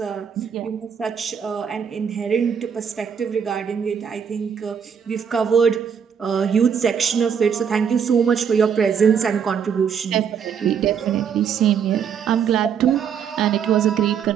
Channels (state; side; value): quieter; left; 7.4 dB